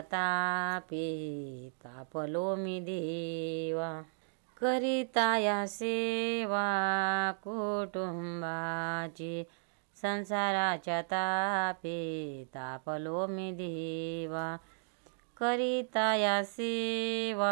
तापे तापलो मी देवा. करिता या सेवा कुटुंबाची. संसाराच्या तापे तापलो मी देवा. करिता या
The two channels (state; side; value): silent; left; digital silence